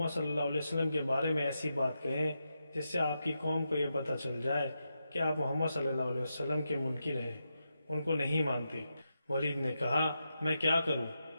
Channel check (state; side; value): inverted; both; correlation -0.87